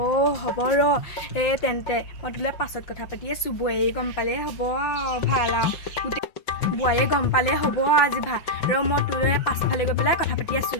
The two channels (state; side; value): late; right; 5.8 ms